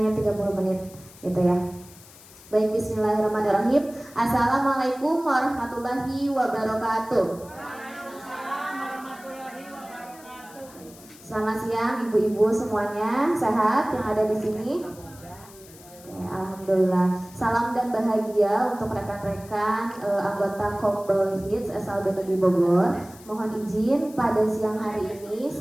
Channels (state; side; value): noise; left; hiss, 21 dB below the sound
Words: 30 menit gitu ya. Baik, bismillahirrahmanirrahim. Assalamualaikum warahmatullahi wabarakatuh. Selamat siang ibu-ibu semuanya, sehat yang ada di sini? Alhamdulillah. Salam dan bahagia untuk rekan-rekan anggota Kombel Hits SLB Bogor. Mohon izin pada siang hari ini